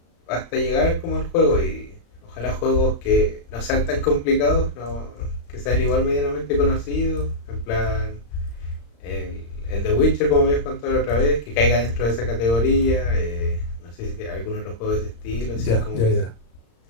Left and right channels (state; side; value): late; right; 35 ms